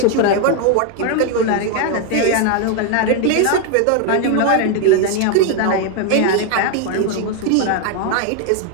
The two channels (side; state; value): both; different; correlation 0.01